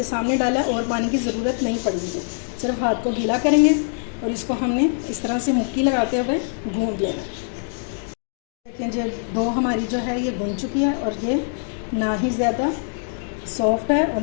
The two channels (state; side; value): silent; right; digital silence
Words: सामने डाला है, और पानी की ज़रूरत नहीं पड़ेगी। सिर्फ हाथ को गीला करेंगे और इसको हमने इस तरह से मुक्की लगाते हुए गूंथ लेना। देखें जी, डो हमारी जो है ये गूंथ चुकी है, और ये ना ही ज़्यादा सॉफ्ट है और